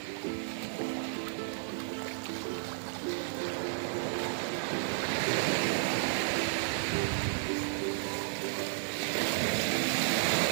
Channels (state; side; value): silent; left; 56 dB below the other